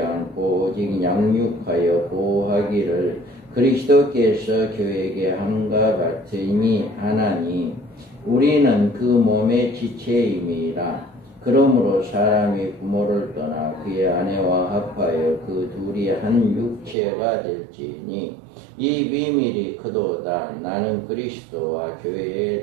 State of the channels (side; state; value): left; drops out; at 16.9 s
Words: 오직 양육하여 보호하기를 그리스도께서 교회에게 함과 같으니 하나니 우리는 그 몸의 지체임이라. 그러므로 사람이 부모를 떠나 그의 아내와 합하여 그 둘이 한 육체가 될지니 이 비밀이 크도다. 나는 그리스도와 교회에